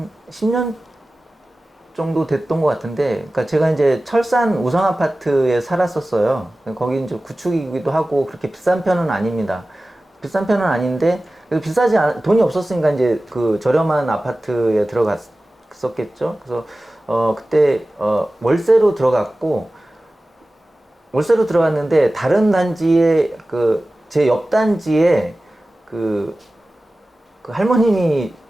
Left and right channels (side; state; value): both; normal; correlation 0.96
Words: 10년 정도 됐던 것 같은데, 그러니까 제가 이제 철산 우성 아파트에 살았었어요. 거기 이제 구축이기도 하고 그렇게 비싼 편은 아닙니다. 비싼 편은 아닌데 돈이 없었으니까 이제 그 저렴한 아파트에 들어갔었겠죠. 그래서 그때 월세로 들어갔는데 다른 단지에 제 옆 단지에 그 할머님이